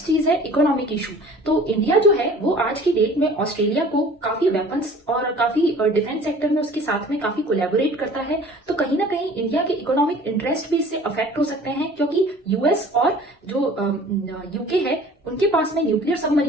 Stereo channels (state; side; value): normal; both; correlation 0.47